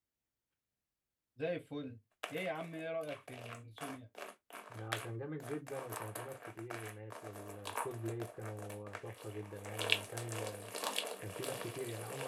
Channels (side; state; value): both; identical; correlation 1.00